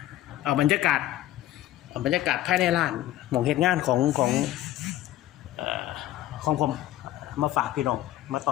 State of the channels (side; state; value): right; quieter; 14.3 dB